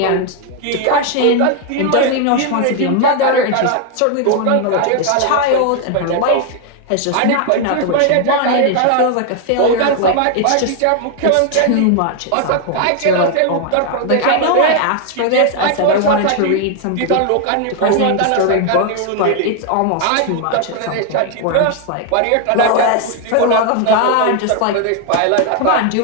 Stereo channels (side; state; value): both; different; correlation 0.00